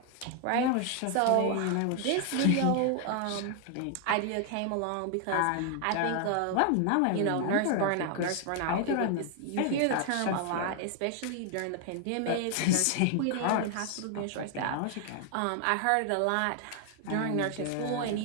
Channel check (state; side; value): different; both; correlation 0.00